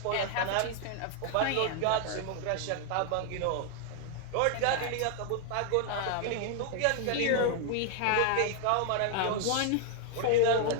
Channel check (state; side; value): different; both; correlation 0.00